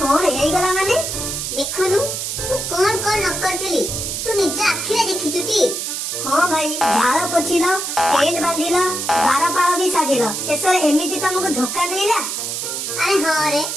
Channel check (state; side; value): noise; right; hiss, 3 dB below the sound